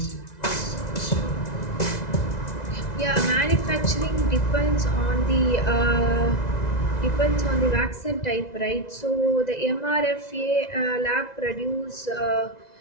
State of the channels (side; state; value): right; late; 2.0 ms